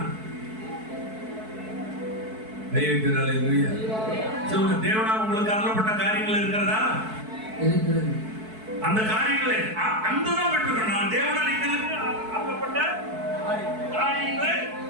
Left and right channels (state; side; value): late; left; 4.6 ms